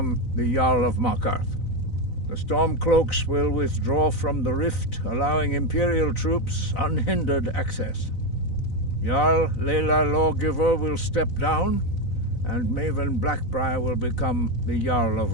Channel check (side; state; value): right; late; 4.0 ms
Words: the Jarl of Markarth. The Stormcloaks will withdraw from the Rift, allowing Imperial troops unhindered access. Jarl Leila Lawgiver will step down, and Maven Blackbriar will become the Jarl of